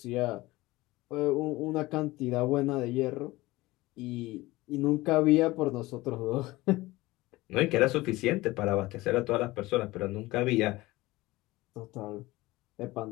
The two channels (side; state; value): right; quieter; 19.6 dB